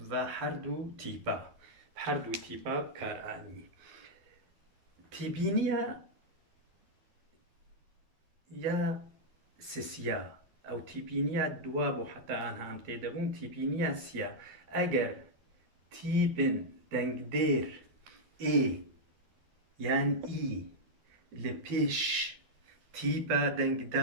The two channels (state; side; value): late; left; 12 ms